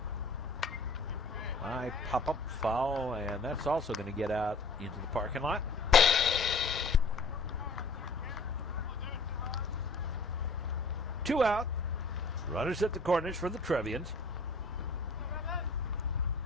High pop-up foul, and that's also going to get out into the parking lot. Two out. Runners at the corners for the Trevians.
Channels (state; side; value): quieter; right; 3.0 dB